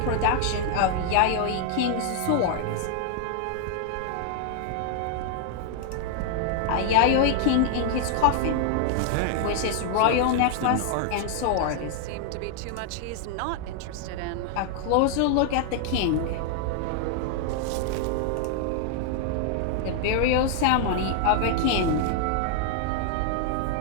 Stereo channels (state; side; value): different; both; correlation 0.00